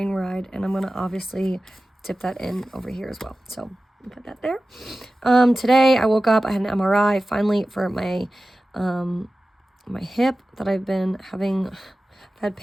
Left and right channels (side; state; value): both; normal; correlation 0.95